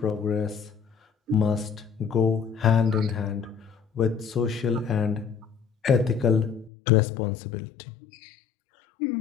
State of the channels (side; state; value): right; drops out; at 6.7 s